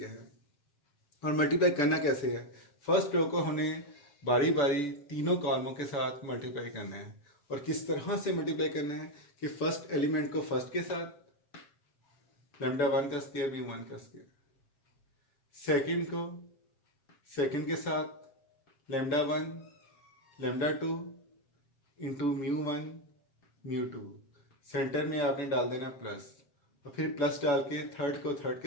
है। और मल्टीप्लाई करना कैसे है, फर्स्ट रो को हमें बारी बारी तीनों कॉलमों के साथ मल्टीप्लाई करना है। और किस तरह से मल्टीप्लाई करना है कि फर्स्ट एलिमेंट को फर्स्ट के साथ λ1 का स्क्वायर μ1 का स्क्वायर, सेकंड को सेकंड के साथ λ1 λ2 इंटू μ1 μ2, सेंटर में आपने डाल देना प्लस, और फिर प्लस डाल के थर्ड को थर्ड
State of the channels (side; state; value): right; late; 7.0 ms